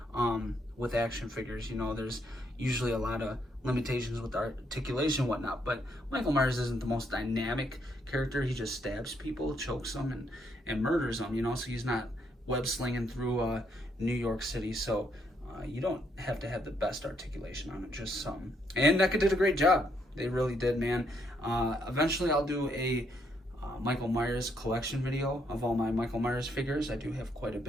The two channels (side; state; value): both; normal; correlation 0.74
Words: with action figures. You know, there's usually a lot of limitations with articulation and whatnot, but Michael Myers isn't the most dynamic character. He just stabs people, chokes them, and murders them, you know, so he's not web slinging through New York City. So you don't have to have the best articulation on it, just some. And NECA did a great job. They really did, man. Eventually I'll do a Michael Myers collection video of all my Michael Myers figures. I do have quite a